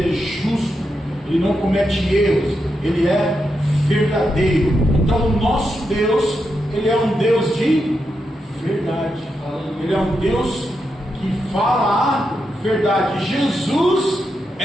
justo. Ele não comete erros. Ele é verdadeiro. Então o nosso Deus, Ele é um Deus de verdade. Ele é um Deus que fala a verdade. Jesus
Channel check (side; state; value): both; normal; correlation 0.85